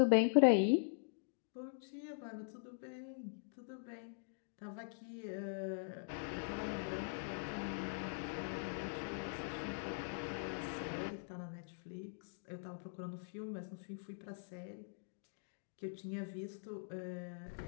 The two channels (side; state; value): right; silent; digital silence